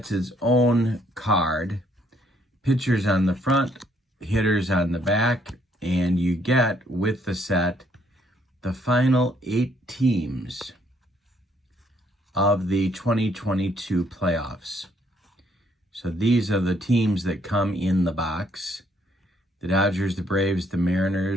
its own card. Pitchers on the front, hitters on the back, and you get with the set the final 8 teams of the 2022 playoffs. So these are the teams that come in the box: the Dodgers, the Braves, the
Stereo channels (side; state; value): both; normal; correlation 0.68